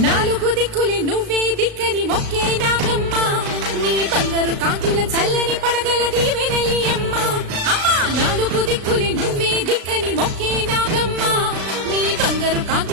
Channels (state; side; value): late; left; 36 ms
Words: నాలుగు దిక్కులే నువ్వే దిక్కని మొక్కే నాగమ్మ నీ బంగారు కాంతుల చల్లని పడగల దీవెనలి అమ్మ అమ్మా నాలుగు దిక్కులే నువ్వే దిక్కని మొక్కే నాగమ్మ నీ బంగారు